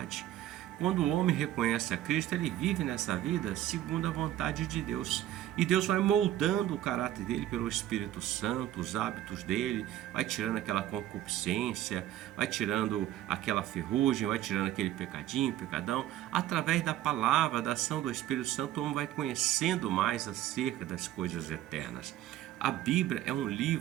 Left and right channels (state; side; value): quieter; left; 13.2 dB